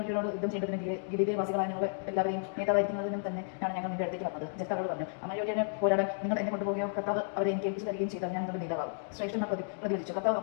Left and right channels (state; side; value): silent; right; digital silence